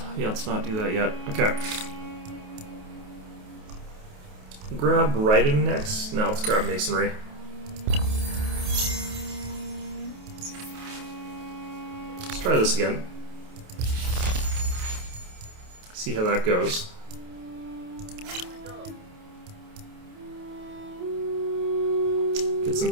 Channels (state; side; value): late; left; 28 ms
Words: Yeah, let's not do that yet. Okay. Grab writing next. No, let's grab masonry. Let's try this again. See how that goes. Get